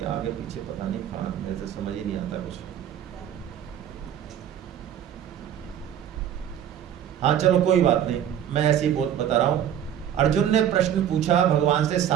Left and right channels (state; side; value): quieter; left; 10.1 dB